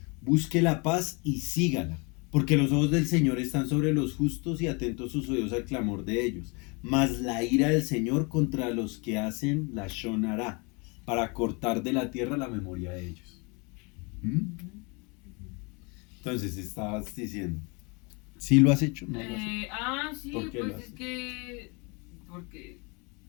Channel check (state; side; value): quieter; right; 30.7 dB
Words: Busque la paz y sígala. Porque los ojos del Señor están sobre los justos y atentos sus oídos al clamor de ellos. Mas la ira del Señor contra los que hacen Lashon Hara, para cortar de la tierra la memoria de ellos. ¿Mm? Entonces estabas diciendo, ¿sí lo has hecho? ¿No lo has hecho? Sí, ¿Por qué lo pues haces? es que. Porque.